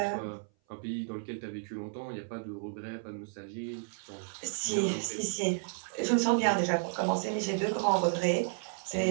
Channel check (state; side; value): silent; left; 56 dB below the other